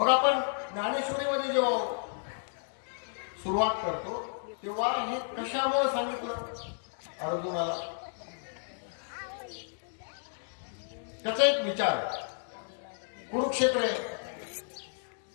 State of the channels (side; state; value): right; silent; digital silence